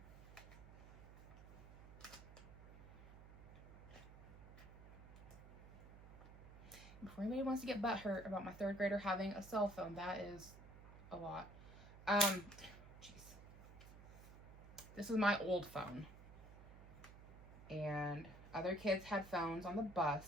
Before anybody wants to get butthurt about my 3rd grader having a cell phone, that is a lot. Jeez. This is my old phone. And other kids had phones on the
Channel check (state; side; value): noise; right; hum, 16 dB below the sound